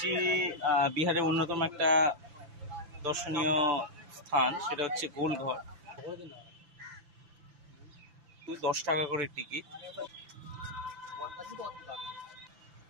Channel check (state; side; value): late; left; 5.9 ms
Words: বিহারের অন্যতম একটা দর্শনীয় স্থান, সেটা হচ্ছে গোলঘর। 10 টাকা করে টিকিট।